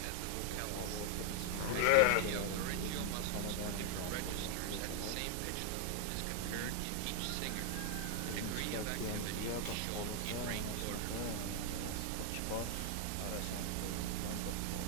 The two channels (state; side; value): different; both; correlation 0.00